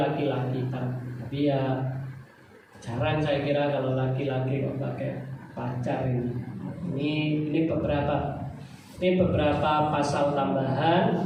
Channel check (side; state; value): both; identical; correlation 1.00